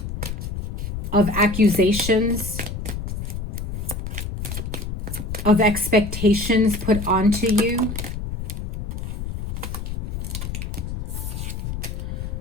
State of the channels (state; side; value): noise; left; rumble, 5 dB below the sound